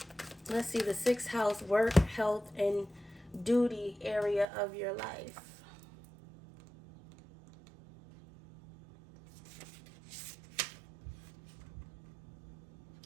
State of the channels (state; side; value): drops out; left; at 4.5 s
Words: Let's see, the 6th house, work, health, and duty area of your life.